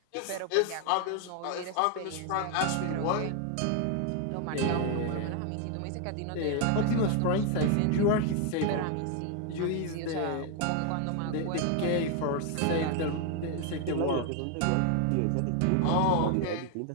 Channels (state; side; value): different; both; correlation 0.01